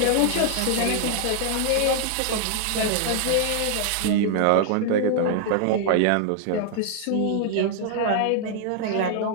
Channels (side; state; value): both; different; correlation 0.00